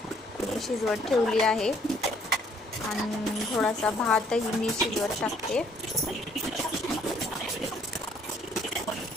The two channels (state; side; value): normal; both; correlation 0.64